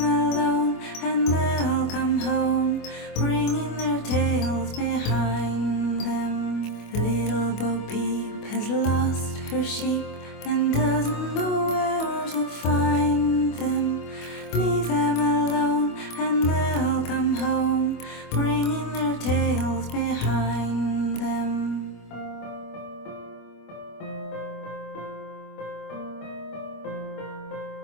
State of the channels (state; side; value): late; right; 25 ms